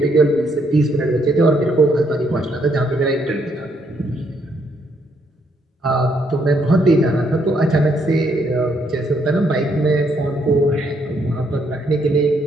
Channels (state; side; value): normal; both; correlation 0.72